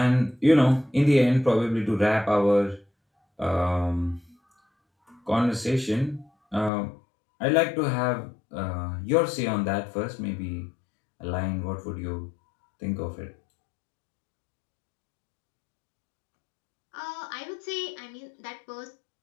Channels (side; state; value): right; drops out; at 6.7 s